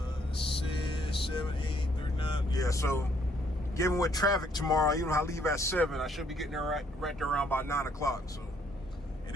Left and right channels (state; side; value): normal; both; correlation 0.67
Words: 6, 7, 8, 39. Yeah, so given with traffic tomorrow, even if I leave at 7, I should be getting there right there around about 9 o'clock. So it